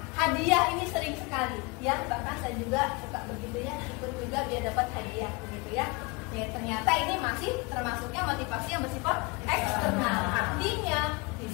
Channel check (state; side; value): quieter; right; 27.3 dB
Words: Hadiah ini sering sekali, ya, bahkan saya juga suka begitu ya, ikut juga biar dapat hadiah, begitu ya. Ternyata ini masih termasuknya motivasi yang bersifat eksternal. Artinya